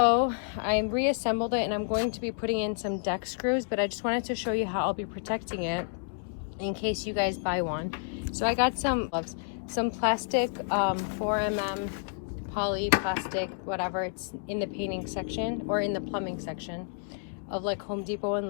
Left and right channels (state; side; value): silent; right; digital silence